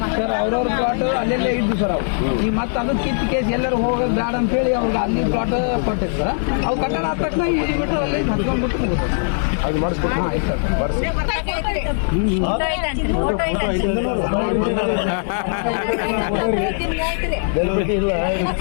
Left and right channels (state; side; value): silent; right; digital silence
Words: ಸರ್ ಅವ್ರವ್ರ ಪ್ಲಾಟ್ ಅಲ್ಲೆಲ್ಲೇ ಇದ್ದು ಸರ್. ಅವು ಈಗ ಮತ್ತೆ ಅದು ಕಿತ್ತು ಕೇಸ್ ಎಲ್ಲರೂ ಹೋಗೋದು ಬೇಡ ಅಂತ ಹೇಳಿ ಅವ್ರಿಗೆ ಅಲ್ಲಿ ಪ್ಲಾಟ್ ಕೊಟ್ಟಿತ್ತು ಸರ್. ಅವು ಕಟ್ಟಡ ಆದ ತಕ್ಷಣ ಇಲ್ಲಿ ಬಿಟ್ಟು ಅಲ್ಲಿ ಹತ್ಕೊಂಡ್ಬಿಟ್ಟು ಮುಗಿದು ಅದು ಮಾಡಿಸ್ಕೊಟ್ಟು